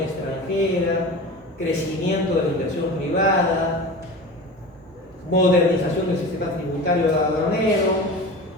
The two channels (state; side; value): normal; both; correlation 0.32